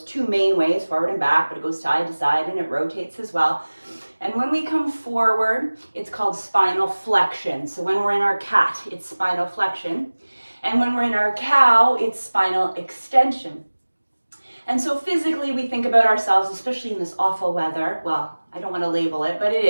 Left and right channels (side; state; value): both; inverted; correlation -1.00